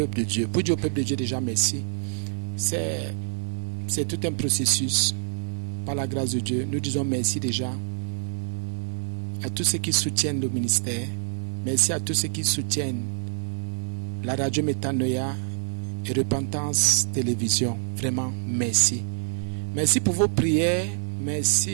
de Dieu. Pour dire au peuple de Dieu déjà merci. C'est tout un processus par la grâce de Dieu. Nous disons merci déjà à tous ceux qui soutiennent le ministère. Merci à tous ceux qui soutiennent la radio Métanoïa et Repentance Télévision. Vraiment, merci. Merci pour vos prières,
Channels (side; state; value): left; silent; digital silence